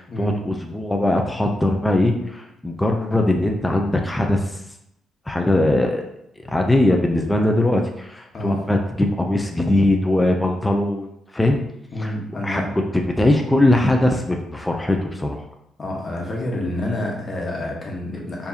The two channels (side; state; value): both; normal; correlation 0.88